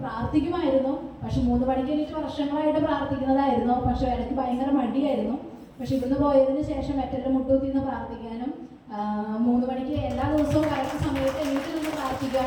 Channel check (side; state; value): both; identical; correlation 1.00